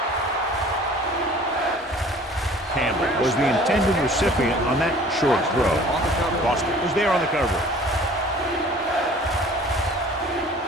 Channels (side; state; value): both; normal; correlation 0.49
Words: Campbell was the intended recipient on that short throw. Boston was there on the cover.